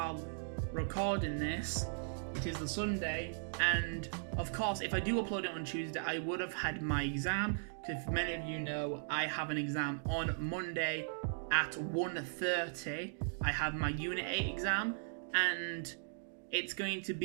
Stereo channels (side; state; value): left; silent; digital silence